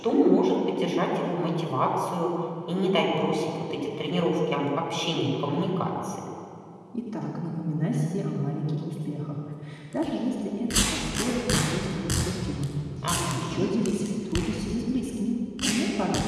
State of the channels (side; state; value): both; identical; correlation 1.00